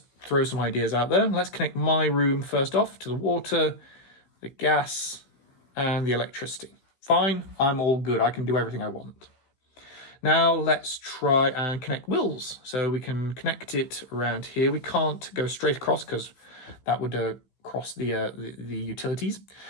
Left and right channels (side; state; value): right; late; 16 ms